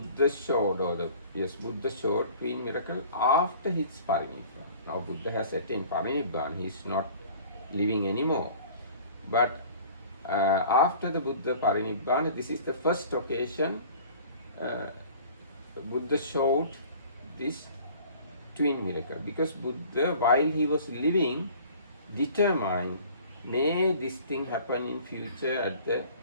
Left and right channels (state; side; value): inverted; both; correlation -0.48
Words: showed, Buddha showed twin miracle after his Parinibbana. Now Buddha has attained Parinibbana, he is not living anymore. But after the Buddha Parinibbana, this is the first occasion Buddha showed this twin miracle, because Buddha, while he was living, determined, may this thing happen in future at the